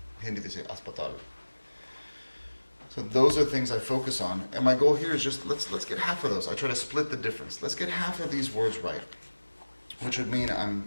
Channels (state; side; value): inverted; both; correlation -1.00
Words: Hindi they say aspatal. So those are things I focus on, and my goal here is just let's get half of those. I try to split the difference. Let's get half of these words right, which would mean